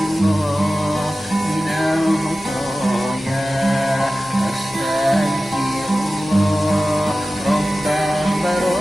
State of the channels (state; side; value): normal; both; correlation 0.95